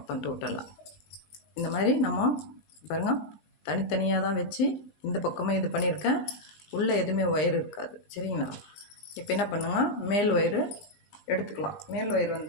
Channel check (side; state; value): right; late; 20 ms